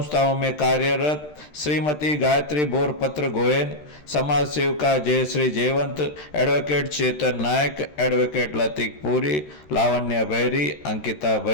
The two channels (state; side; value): late; right; 13 ms